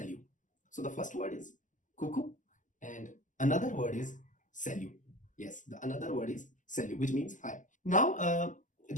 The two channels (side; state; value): right; late; 0.37 ms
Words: So the first word is coucou and another word is salut. Yes, the another word is salut, which means hi. Now